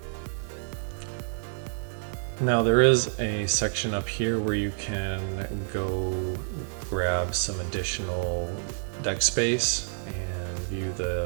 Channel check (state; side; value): silent; left; digital silence